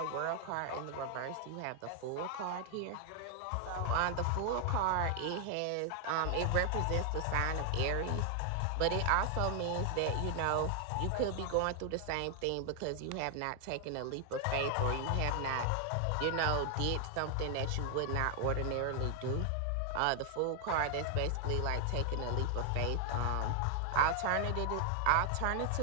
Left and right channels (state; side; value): different; both; correlation 0.00